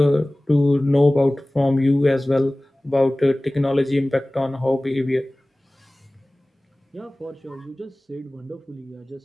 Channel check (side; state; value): both; normal; correlation 0.98